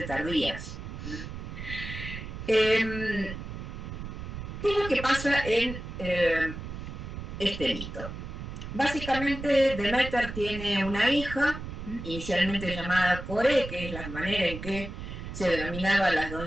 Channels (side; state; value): right; noise; rumble, 8 dB below the sound